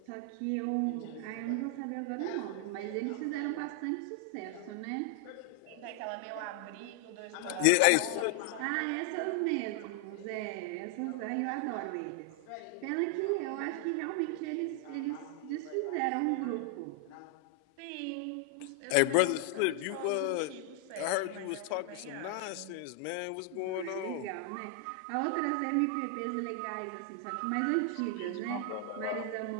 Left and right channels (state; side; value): different; both; correlation 0.00